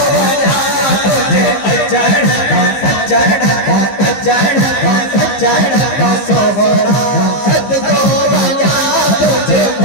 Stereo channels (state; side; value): late; right; 15 ms